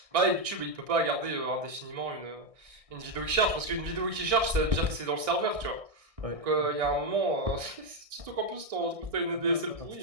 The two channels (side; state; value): left; late; 1.6 ms